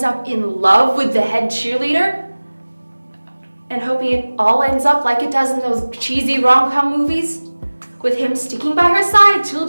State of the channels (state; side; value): inverted; both; correlation -1.00